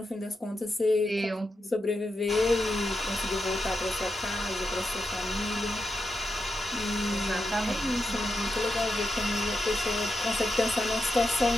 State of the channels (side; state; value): both; normal; correlation 0.86